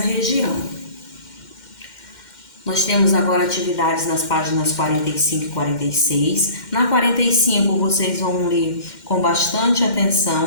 Nós temos agora atividades nas páginas 45 e 46. Na 45 vocês vão ler com bastante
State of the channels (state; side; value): late; right; 2.1 ms